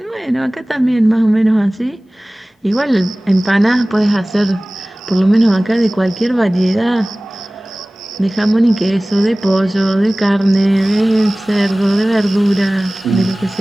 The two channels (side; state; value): both; normal; correlation 0.98